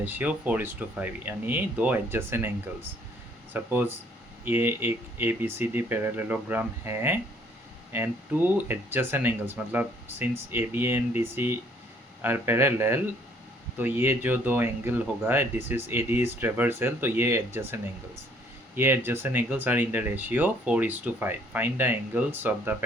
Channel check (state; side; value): normal; both; correlation 0.62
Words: 4:5 यानी दो adjacent angles। suppose ये एक ABCD parallelogram है and two adjacent angles मतलब since AB and DC are parallel तो ये जो दो एंगल होगा this is AD is transversal तो ये adjacent angles are in the ratio 4:5। Find the angles of the